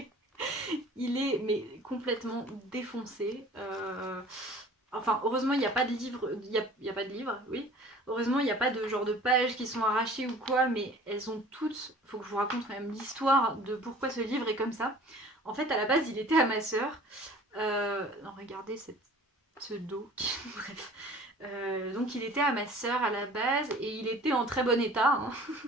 Il est mais complètement défoncé. Enfin, heureusement, il n'y a pas de livre. Il y a pas de livre, oui. Heureusement, il n'y a pas de genre de pages qui sont arrachées ou quoi, mais elles ont toutes. Faut que je vous raconte quand même l'histoire de pourquoi ce livre est comme ça. En fait, à la base, il était à ma sœur. Non, regardez ce dos. Bref. Donc, il était à ma sœur à la base et il était en très bon état, hein.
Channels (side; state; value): both; normal; correlation 0.47